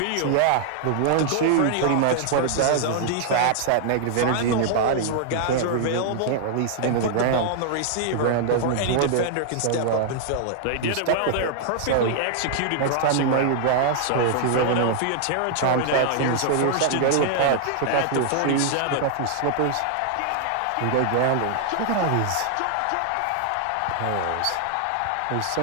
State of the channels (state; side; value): different; both; correlation -0.01